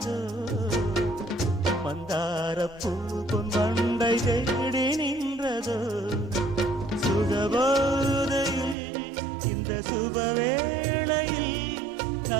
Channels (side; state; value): left; drops out; at 8.8 s